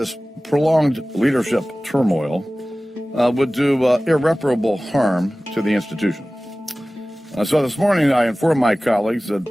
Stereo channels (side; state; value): both; normal; correlation 0.97